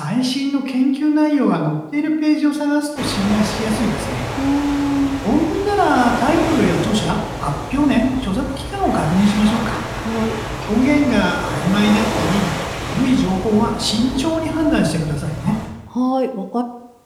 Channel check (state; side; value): identical; both; correlation 1.00